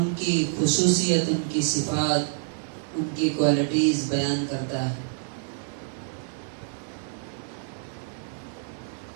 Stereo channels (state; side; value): silent; left; 59 dB below the other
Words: کی خصوصیت، ان کی صفات، ان کی کوالٹیز بیان کرتا ہے۔